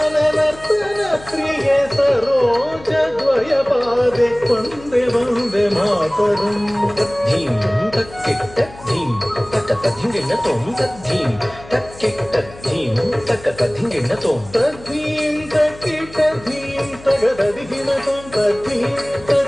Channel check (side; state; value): left; noise; hum, 19 dB below the sound